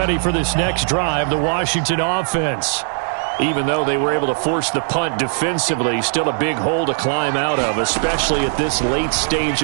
for this next drive, the Washington offense. Even though they were able to force the punt defensively, still a big hole to climb out of, especially at this late stage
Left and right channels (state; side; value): silent; left; 67 dB below the other